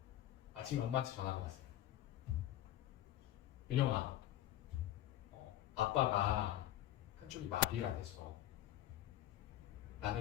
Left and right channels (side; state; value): right; quieter; 13.3 dB